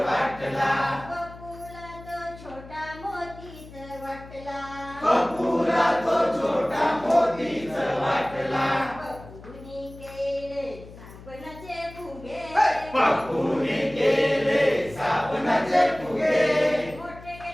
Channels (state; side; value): noise; left; hum, 18 dB below the sound